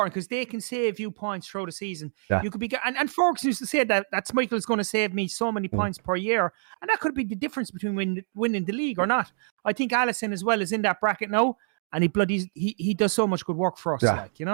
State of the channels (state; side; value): silent; left; 58 dB below the other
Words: because they can save you points throughout the season. You could be, and Ferguson used to say that Schmeichel is going to save me so many points per year, and that could be the difference between winning the league or not. I think Alisson as well is in that bracket now, and he does so much good work for us, like, you